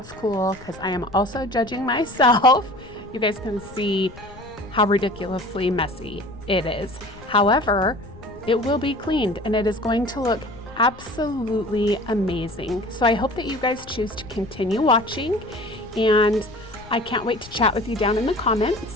cool, because I am also judging myself. You guys can see how ridiculously messy it is. However, it will be cleaned and it is going to look absolutely amazing. So I hope that you guys choose to continue watching, and I can't wait to chat with you down in the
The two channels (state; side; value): noise; left; rumble, 19 dB below the sound